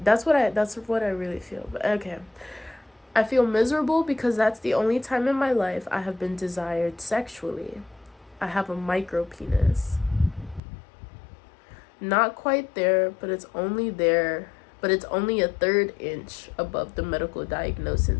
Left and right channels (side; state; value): right; drops out; at 10.6 s